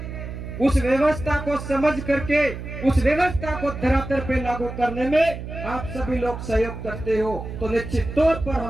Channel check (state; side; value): noise; right; hum, 9 dB below the sound